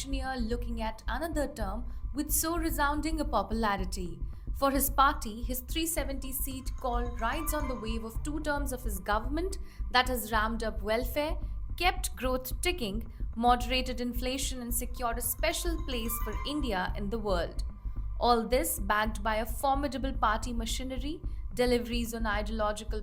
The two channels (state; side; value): identical; both; correlation 1.00